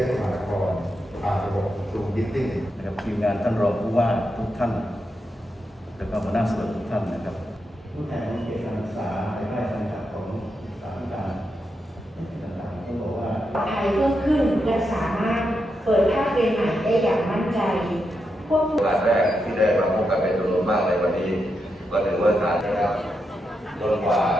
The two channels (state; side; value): normal; both; correlation 0.85